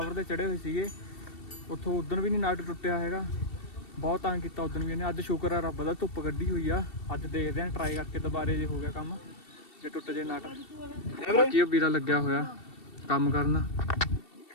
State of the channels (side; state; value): right; late; 2.7 ms